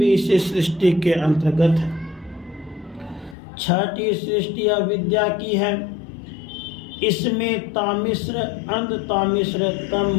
इसी सृष्टि के अंतर्गत है। छठी सृष्टि अविद्या की है, इसमें तामिश्र, अंधतामिश्र, तम,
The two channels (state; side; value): drops out; right; at 3.4 s